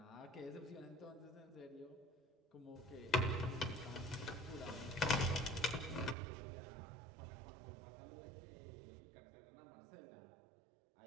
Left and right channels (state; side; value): drops out; left; at 6.2 s